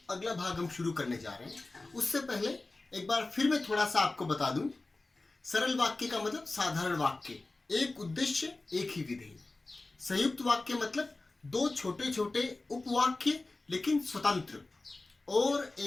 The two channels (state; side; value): quieter; right; 3.2 dB